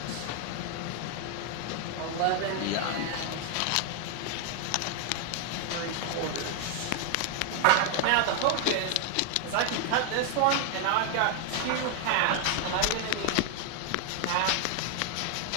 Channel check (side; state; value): both; different; correlation 0.00